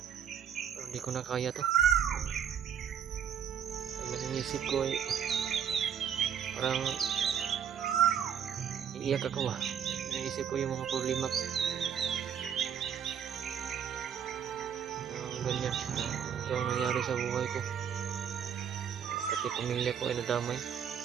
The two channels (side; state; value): left; quieter; 8.3 dB